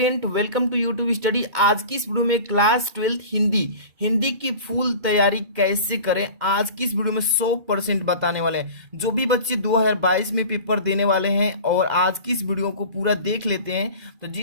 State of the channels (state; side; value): late; left; 2.4 ms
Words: welcome to YouTube study. आज की इस वीडियो में क्लास 12 हिंदी की फुल तैयारी कैसे करें, आज की इस वीडियो में 100% बताने वाले हैं। जो भी बच्चे 2022 में पेपर देने वाले हैं और आज की इस वीडियो को पूरा देख लेते हैं तो